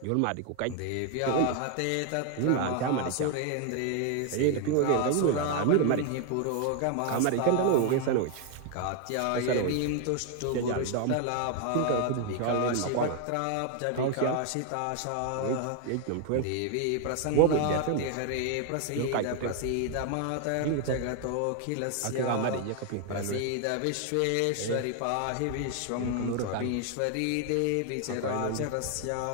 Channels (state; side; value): different; both; correlation 0.01